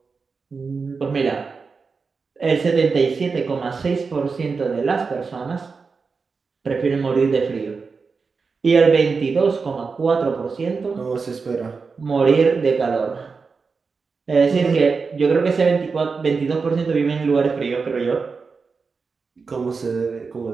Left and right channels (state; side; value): quieter; left; 4.8 dB